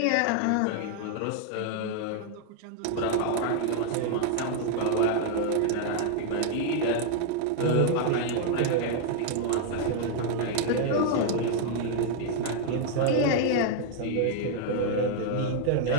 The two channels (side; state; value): both; different; correlation 0.00